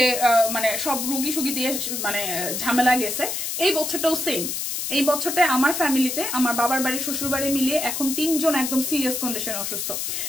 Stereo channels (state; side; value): noise; left; hiss, 3 dB below the sound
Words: মানে সব রুগী সুগী দিয়ে মানে ঝামেলা গেছে, এই বছরটাও সেম। এই বছরটা আমার ফ্যামিলিতে, আমার বাবার বাড়ি শ্বশুর বাড়ি মিলিয়ে এখন 3 জন একদম সিরিয়াস কন্ডিশনে অসুস্থ।